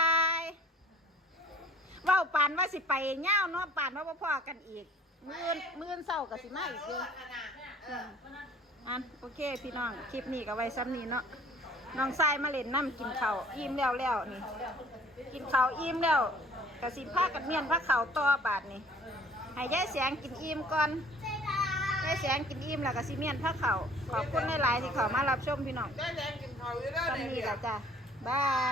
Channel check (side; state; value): both; normal; correlation 0.53